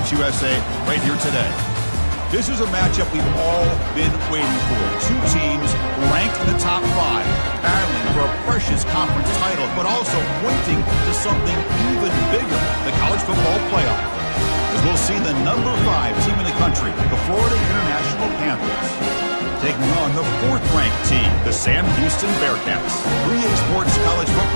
USA right here today. This is a matchup we've all been waiting for. Two teams ranked in the top 5, battling for a precious conference title, but also pointing to something even bigger, the college football playoff. As we'll see the number 5 team in the country, the Florida International Panthers, taking on the 4th-ranked team, the Sam Houston Bearcats. 3A Sports College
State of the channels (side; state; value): both; inverted; correlation -1.00